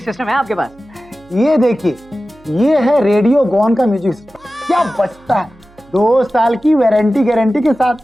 सिस्टम है आपके पास? ये देखिए, ये है रेडियो गॉन का म्यूजिक सिस्टम। क्या बचता है, 2 साल की वारंटी गारंटी के साथ।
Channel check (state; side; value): noise; right; hum, 28 dB below the sound